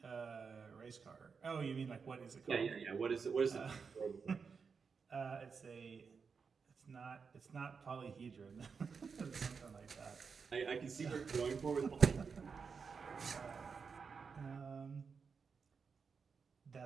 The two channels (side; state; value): left; quieter; 5.6 dB